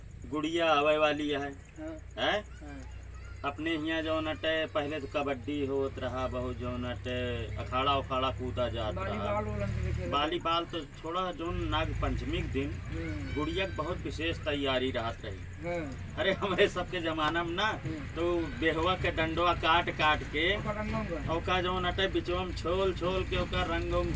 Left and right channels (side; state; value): both; identical; correlation 1.00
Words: गुड़िया आवे वाली है हाँ हैं? हाँ अपने यहाँ जो नटे पहले तो कबड्डी होत रहा बहुत जो नटे अखाड़ा उखाड़ा कूदा जात रहा वॉलीबॉल ओलंपिक खेल वॉलीबॉल तो छोड़ा जो नाग पंचमी के दिन गुड़िया के बहुत विशेष तैयारी रहत रही। हाँ अरे हमारे सबके जमाना में ना तो बेहवा के डंडवा काट काट के ओका जो नटे बिचवा में छोल छोल के ओका रंग उंग